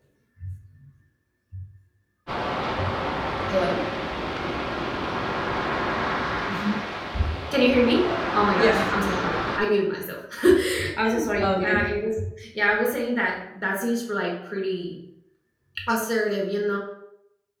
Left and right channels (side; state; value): both; identical; correlation 1.00